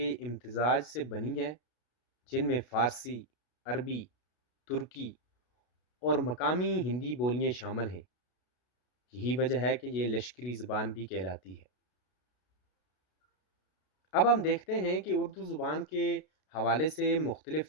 امتزاج سے بنی ہے، جن میں فارسی، عربی، ترکی اور مقامی ہندی بولیاں شامل ہیں۔ یہی وجہ ہے کہ یہ لشکری زبان بھی کہلاتی ہے۔ اب ہم دیکھتے ہیں کہ اردو زبان کے حوالے سے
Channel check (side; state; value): right; late; 32 ms